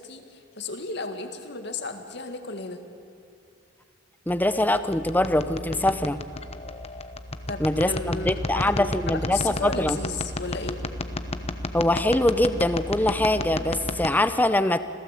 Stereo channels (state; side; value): normal; both; correlation 0.72